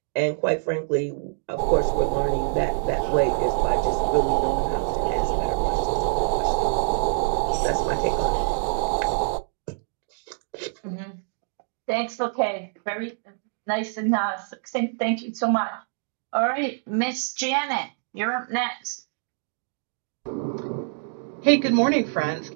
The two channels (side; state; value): left; silent; 61 dB below the other